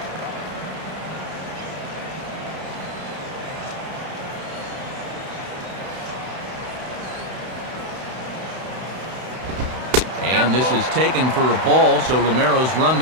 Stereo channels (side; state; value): left; late; 32 ms